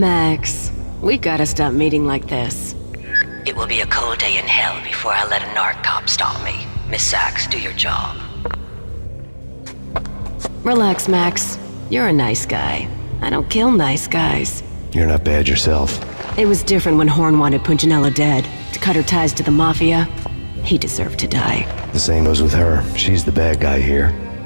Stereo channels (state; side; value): inverted; both; correlation -1.00